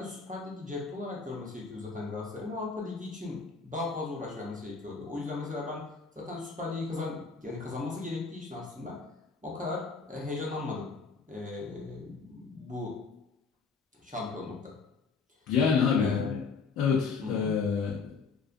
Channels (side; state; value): right; quieter; 4.9 dB